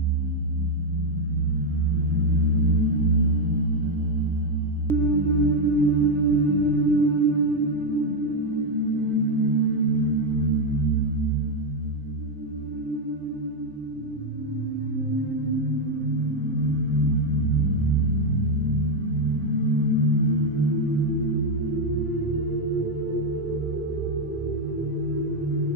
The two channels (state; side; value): normal; both; correlation 0.03